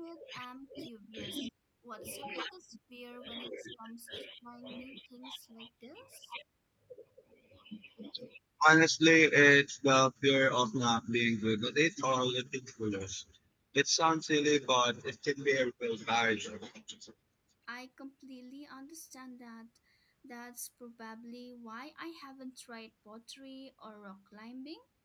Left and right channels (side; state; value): both; identical; correlation 1.00